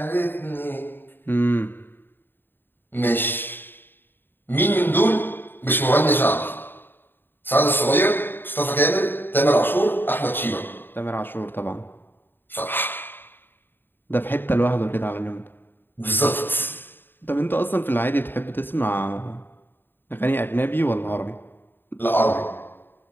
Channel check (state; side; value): late; right; 0.097 ms